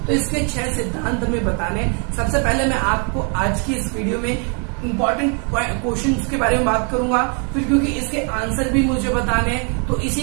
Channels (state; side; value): quieter; left; 38.5 dB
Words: तो इसके 6 सिद्धांत हमें बताने। सबसे पहले मैं आपको आज की इस वीडियो में इम्पोर्टेंट क्वेश्चंस के बारे में बात करूंगा, फिर क्योंकि इसके आंसर भी मुझे बताने हैं तो